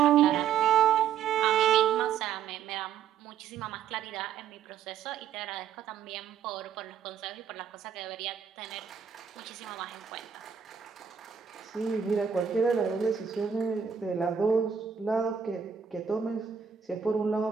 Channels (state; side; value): quieter; left; 7.8 dB